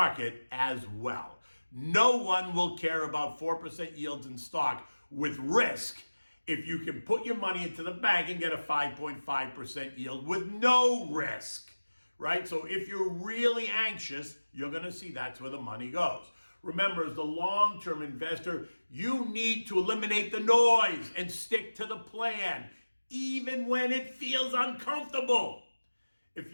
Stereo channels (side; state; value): both; inverted; correlation -1.00